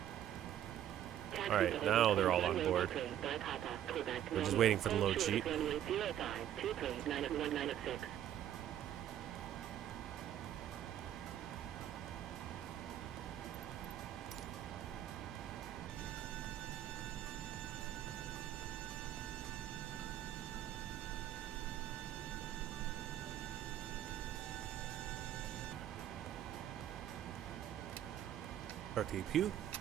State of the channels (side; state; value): left; quieter; 11.2 dB